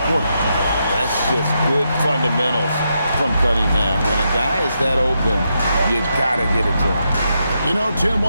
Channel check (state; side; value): inverted; both; correlation -0.83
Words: quarter. That's just good fundamentals from Cunningham. When a guy is that open, you gotta get it to him. You know, Tim,